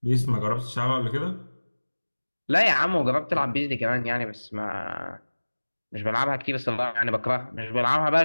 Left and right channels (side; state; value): both; inverted; correlation -1.00